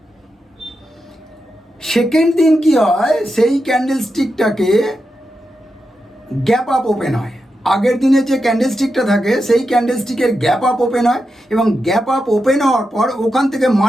সেকেন্ড দিন কি হয়? সেই ক্যান্ডেলস্টিকটাকে গ্যাপ আপ ওপেন হয়। আগের দিনে যে ক্যান্ডেলস্টিকটা থাকে সেই ক্যান্ডেলস্টিকের গ্যাপ আপ ওপেন হয়, এবং গ্যাপ আপ ওপেন হওয়ার পর ওখান থেকে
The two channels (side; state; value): both; normal; correlation 0.88